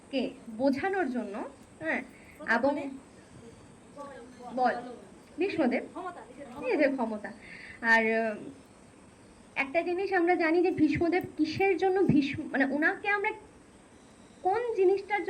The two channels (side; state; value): both; identical; correlation 1.00